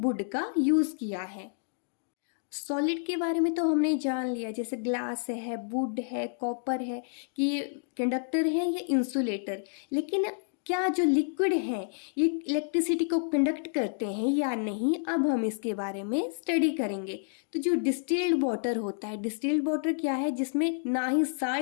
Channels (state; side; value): silent; right; digital silence